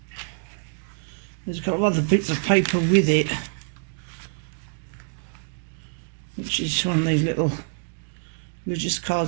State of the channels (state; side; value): silent; left; digital silence